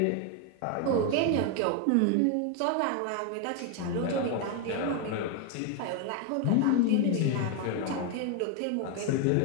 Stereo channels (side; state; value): both; different; correlation 0.01